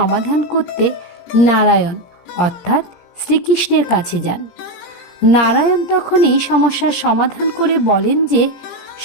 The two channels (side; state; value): right; late; 17 ms